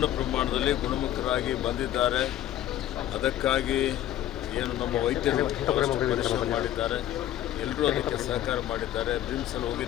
ಪ್ರಮಾಣದಲ್ಲಿ ಗುಣಮುಖರಾಗಿ ಬಂದಿದ್ದಾರೆ. ಅದಕ್ಕಾಗಿ ಏನು ನಮ್ಮ ವೈದ್ಯರು ಪರಿಶ್ರಮ ಮಾಡಿದ್ದಾರೆ, ಎಲ್ಲರೂ ಅದಕ್ಕೆ ಸಹಕಾರ ಮಾಡಿದ್ದಾರೆ. ಬ್ರಿಮ್ಸಲ್ಲಿ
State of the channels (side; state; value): right; quieter; 12.6 dB